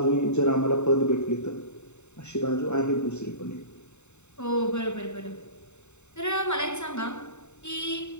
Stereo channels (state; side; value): late; right; 0.82 ms